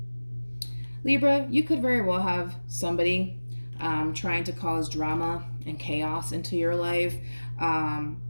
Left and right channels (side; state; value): both; inverted; correlation -1.00